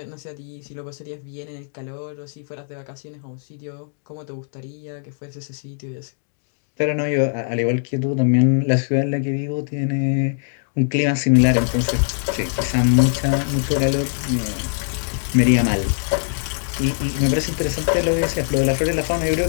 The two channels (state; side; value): silent; right; digital silence